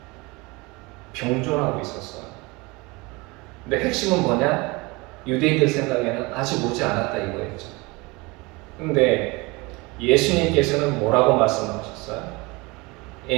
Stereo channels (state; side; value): quieter; left; 25.0 dB